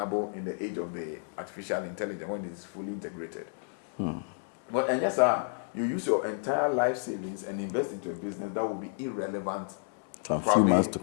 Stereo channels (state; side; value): silent; right; digital silence